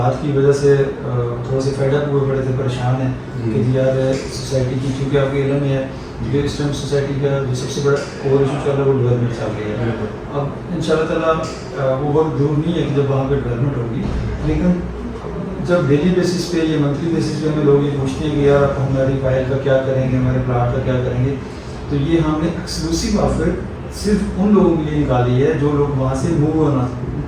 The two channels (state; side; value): identical; both; correlation 1.00